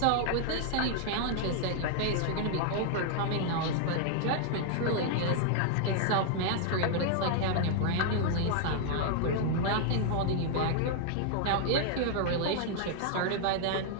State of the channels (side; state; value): both; different; correlation 0.00